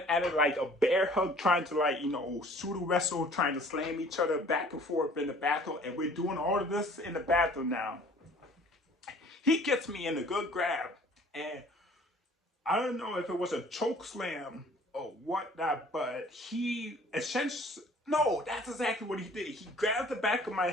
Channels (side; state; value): both; normal; correlation 0.52